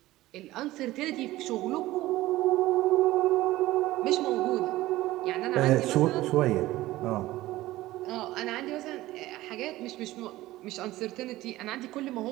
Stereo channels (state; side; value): quieter; left; 16.9 dB